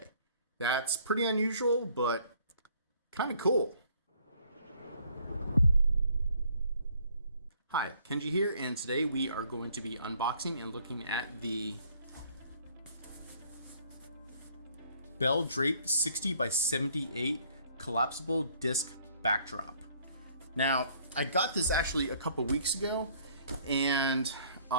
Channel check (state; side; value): inverted; both; correlation -0.61